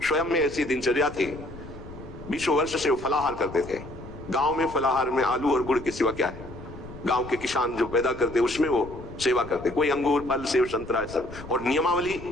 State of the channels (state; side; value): noise; left; rumble, 15 dB below the sound